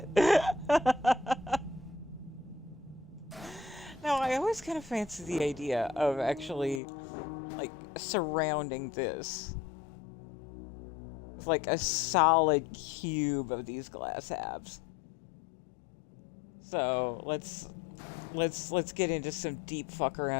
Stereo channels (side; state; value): right; drops out; at 6.8 s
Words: No, I always kind of fancy the idea of actually, like, surrounding this with, like, a solid cube of these glass halves. So, let's get into some deep fuck